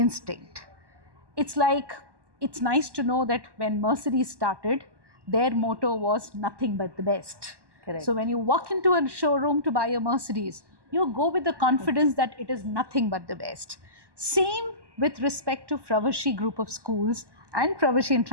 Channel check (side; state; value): left; late; 1.1 ms